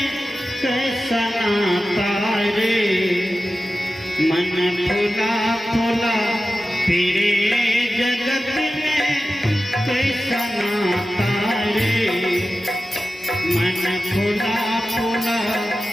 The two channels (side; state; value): both; normal; correlation 0.94